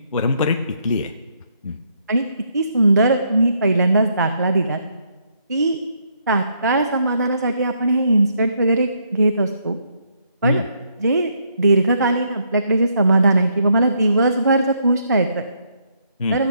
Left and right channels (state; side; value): inverted; both; correlation -0.73